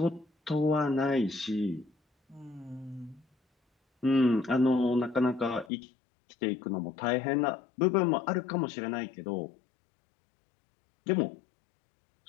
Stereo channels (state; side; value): drops out; right; at 5.7 s